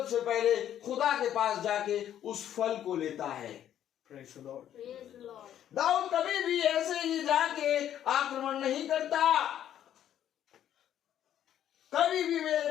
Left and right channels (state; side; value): quieter; right; 10.7 dB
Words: पहले खुदा के पास जाके उस फल को लेता है। Praise the Lord. दाऊद कभी भी ऐसे ही जाके आक्रमण नहीं करता। कभी भी